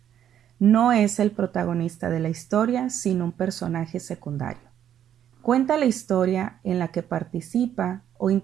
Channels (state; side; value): quieter; left; 10.0 dB